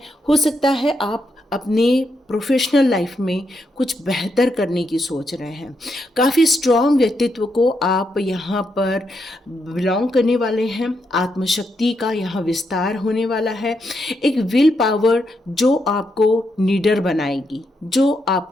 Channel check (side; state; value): both; normal; correlation 0.81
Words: हो सकता है आप अपने प्रोफेशनल लाइफ में कुछ बेहतर करने की सोच रहे हैं। काफ़ी स्ट्रॉन्ग व्यक्तित्व को आप यहाँ पर बिलोंग करने वाले हैं। आत्मशक्ति का यहाँ विस्तार होने वाला है। एक विल पावर जो आपको लीडर बनाएगी, जो